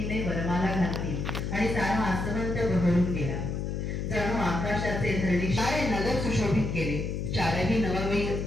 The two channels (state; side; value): noise; left; hum, 3 dB below the sound